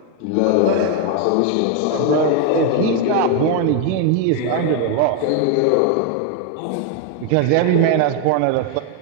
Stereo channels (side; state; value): both; different; correlation 0.01